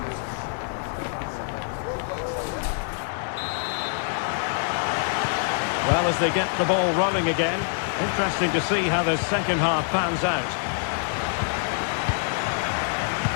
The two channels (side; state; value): right; silent; 61 dB below the other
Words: Well, as they get the ball rolling again, interesting to see how the second half pans out.